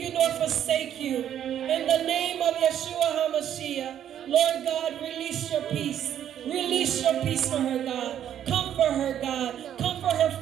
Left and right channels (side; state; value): left; quieter; 10.2 dB